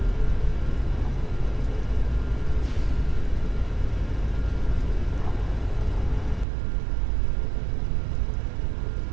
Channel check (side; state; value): left; drops out; at 6.5 s